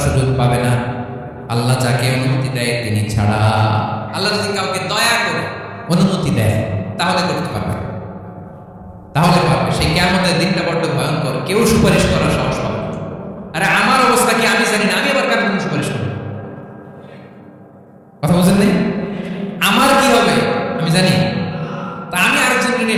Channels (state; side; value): identical; both; correlation 1.00